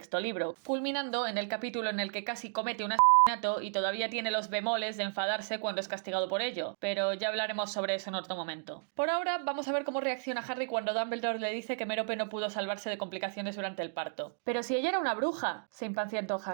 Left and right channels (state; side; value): silent; left; digital silence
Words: libro, culminando en el capítulo en el que casi comete un asesinato y todavía tiene los bemoles de enfadarse cuando es castigado por ello, pero ya hablaremos sobre eso en otro momento. Por ahora vamos a ver cómo reacciona Harry cuando Dumbledore le dice que Merope no pudo salvarse de complicaciones durante el parto. Pero si ella era una bruja, se impacientó